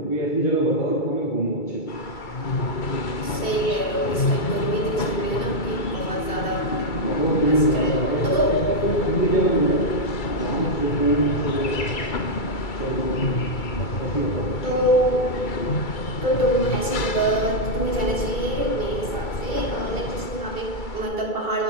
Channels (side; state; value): right; late; 2.3 ms